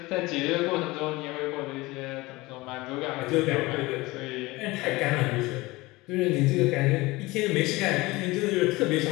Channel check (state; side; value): quieter; right; 21.3 dB